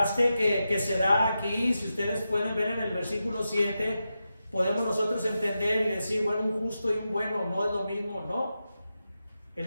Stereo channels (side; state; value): both; inverted; correlation -0.90